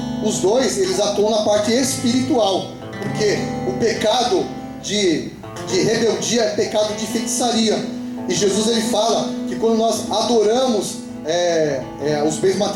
Os 2, eles atuam na parte espiritual, porque o pecado de rebeldia é pecado de feitiçaria. E Jesus ele fala que quando nós adoramos os bens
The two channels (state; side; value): identical; both; correlation 1.00